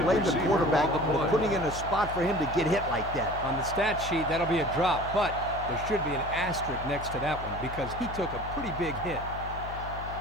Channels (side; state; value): left; noise; hum, 10 dB below the sound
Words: blame the quarterback for putting in a spot for him to get hit like that. On the stat sheet, that'll be a drop, but there should be an asterisk next to that one because he took a pretty big hit.